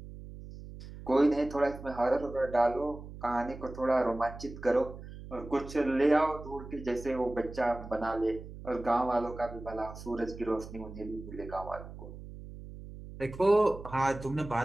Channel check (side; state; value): right; noise; hum, 13 dB below the sound